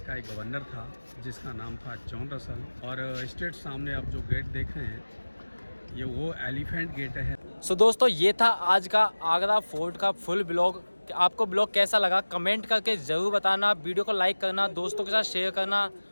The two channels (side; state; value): both; inverted; correlation -1.00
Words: का एक गवर्नर था, जिसका नाम था जॉन रसल। और स्ट्रेट सामने आप जो गेट देख रहे हैं, ये वो एलिफेंट गेट है। सो दोस्तों, ये था आज का आगरा फोर्ट का फुल ब्लॉग। आपको ब्लॉग कैसा लगा कमेंट करके ज़रूर बताना। वीडियो को लाइक करना, दोस्तों के साथ शेयर करना,